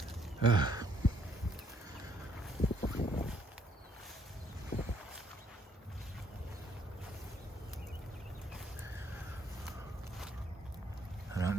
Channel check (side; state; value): both; normal; correlation 0.67